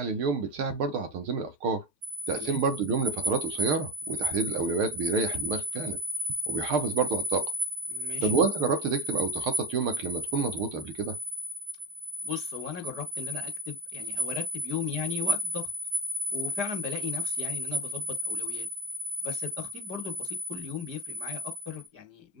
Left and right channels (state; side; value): late; left; 5.0 ms